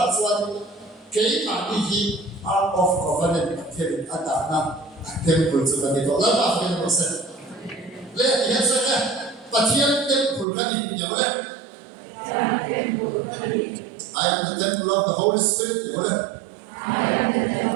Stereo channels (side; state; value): left; drops out; at 10.5 s